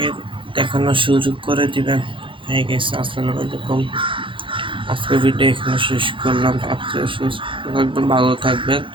দেখানোর সুযোগ করে দিবেন। হ্যাঁ গাইস, আসসালামু আলাইকুম। আজকে ভিডিও এখানে শেষ করলাম। আপনারা সুস্থ থাকবেন, ভালো থাকবেন।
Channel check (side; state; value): left; late; 0.25 ms